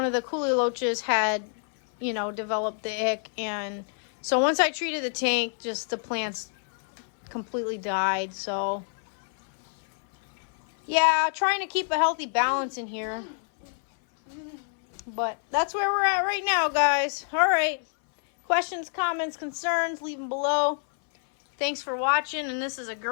of the coolie loaches had, you know, developed the ick. And so once I treated the tank, just the plants completely died. So yeah, trying to keep a healthy balance in here. But that's where we're at right now, guys. All right. Questions, comments, concerns, leave them below. Thanks for watching. And this is A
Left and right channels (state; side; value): silent; right; 60 dB below the other